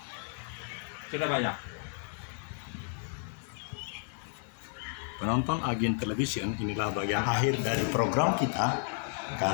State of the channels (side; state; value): right; silent; 56 dB below the other